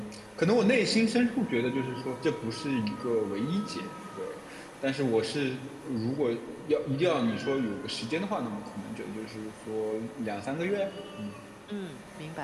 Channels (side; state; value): both; identical; correlation 1.00